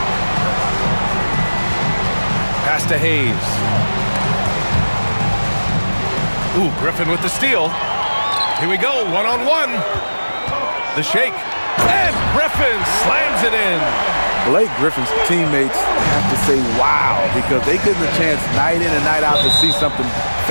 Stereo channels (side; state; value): both; inverted; correlation -1.00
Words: Pass to Hayes. Ooh, Griffin with the steal. Here we go, one-on-one. The shake. And Griffin slams it in. Blake Griffin's teammates have to say wow, because they get the chance night in and night out to see something